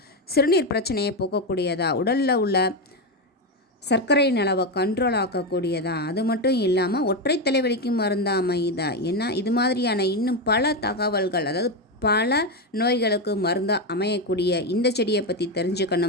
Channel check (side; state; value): both; normal; correlation 0.10